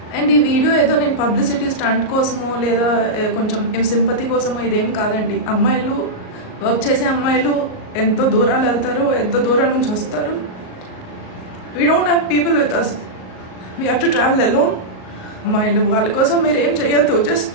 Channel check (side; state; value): right; late; 38 ms